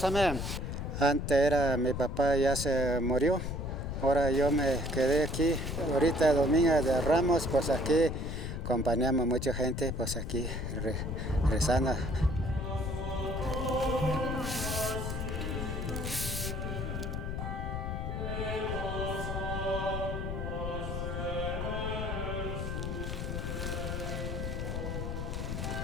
Amén. Antes era mi papá, ya se murió. Ahora yo me quedé aquí. Ahorita Domingo de Ramos, pues aquí acompañamos mucha gente, pues aquí rezando.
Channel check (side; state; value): left; noise; rumble, 3 dB below the sound